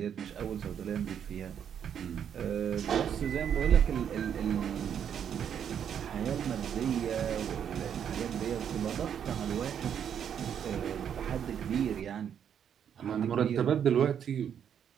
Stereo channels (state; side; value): quieter; left; 8.6 dB